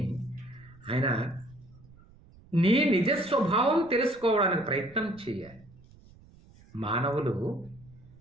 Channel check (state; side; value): noise; right; rumble, 24 dB below the sound